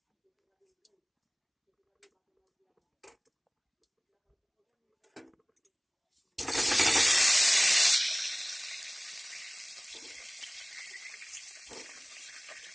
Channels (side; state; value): both; identical; correlation 1.00